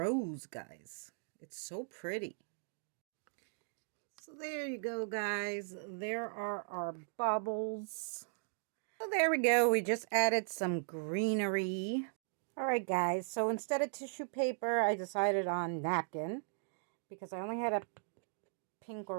guys. It's so pretty. So there you go, guys. There are our baubles. So there we go. We just added some greenery. Alright, guys. So instead of tissue paper, I decided on napkin. Because I only had a pink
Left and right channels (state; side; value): silent; left; digital silence